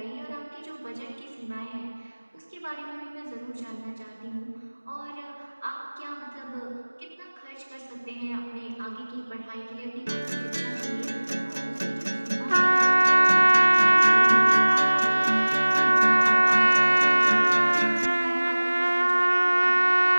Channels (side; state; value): both; inverted; correlation -1.00